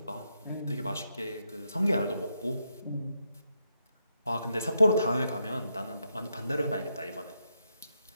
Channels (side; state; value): both; inverted; correlation -0.82